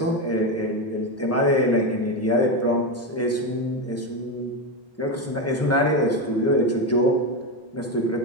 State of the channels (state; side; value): normal; both; correlation 0.13